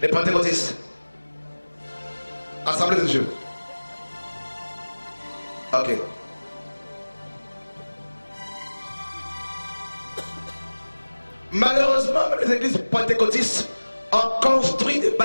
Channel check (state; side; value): inverted; both; correlation -1.00